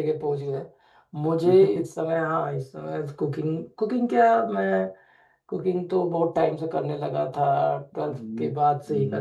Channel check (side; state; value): both; identical; correlation 1.00